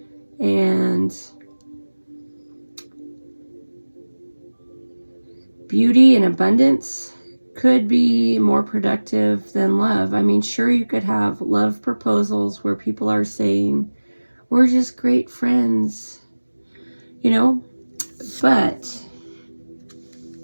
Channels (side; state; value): both; inverted; correlation -1.00